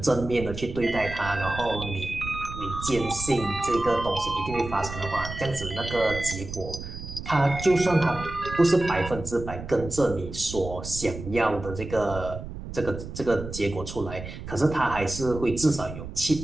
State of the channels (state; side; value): noise; right; rumble, 10 dB below the sound